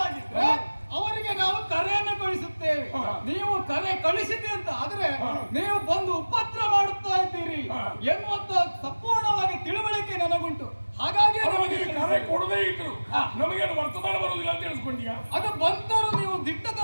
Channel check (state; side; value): inverted; both; correlation -1.00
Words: ಅವರಿಗೆ ನಾವು ಕರೆಯನ್ನು ಕಳಿಸುತ್ತೇವೆ. ನೀವು ಕರೆ ಕಳಿಸಿದೆ ಅಂತ ಆದ್ರೆ ನೀವು ಬಂದು ಉಪದ್ರ ಮಾಡುತ್ತಾ ಇದ್ದೀರಿ ಎನ್ನುವಂತ ಸಂಪೂರ್ಣವಾಗಿ ತಿಳುವಳಿಕೆ ನನಗುಂಟು. ಹಾಗಾಗಿ ನಮಗೆ ಕರೆ ಕೊಡದೇ ಇದ್ರು ನಮಗೇನು ವರ್ತಮಾನ ಬರುವುದಿಲ್ಲ ಅಂತ ತಿಳಿಸ್ಕೊಂಡ್ಯಾ? ಅದು ಬಂದರೂ ನೀವು